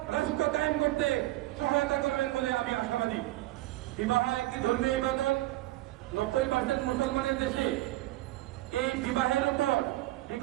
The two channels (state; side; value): quieter; left; 17.5 dB